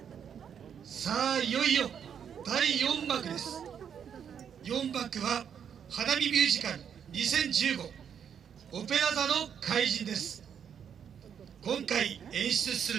さあいよいよ第4幕です。4幕は花火ミュージカル2015オペラ座の怪人です。今回演出す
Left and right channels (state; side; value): quieter; left; 8.0 dB